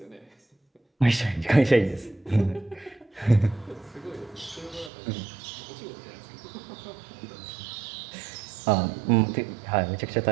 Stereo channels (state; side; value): drops out; left; at 4.9 s